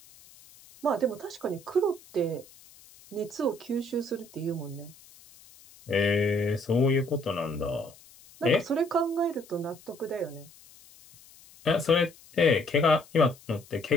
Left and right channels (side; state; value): left; noise; hiss, 24 dB below the sound